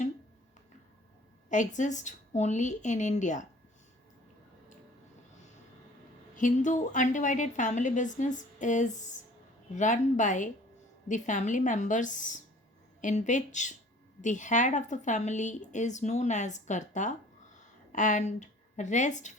exists only in India. Hindu undivided family business is run by the family members, in which the head of the family is known as Karta and rest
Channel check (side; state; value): both; normal; correlation 0.50